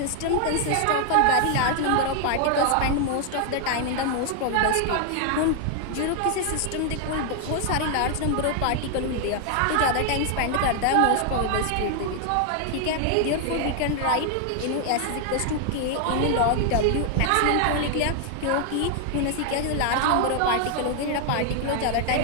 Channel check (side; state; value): both; different; correlation 0.00